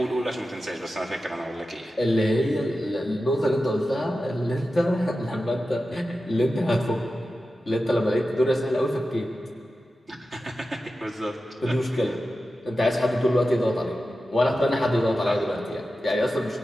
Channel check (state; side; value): normal; both; correlation 0.93